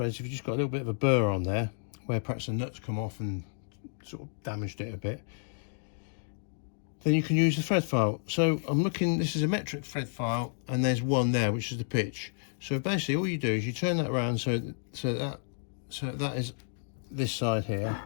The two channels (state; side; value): silent; right; digital silence